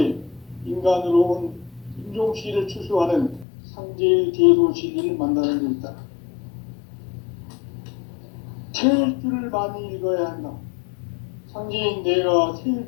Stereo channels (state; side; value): drops out; right; at 3.5 s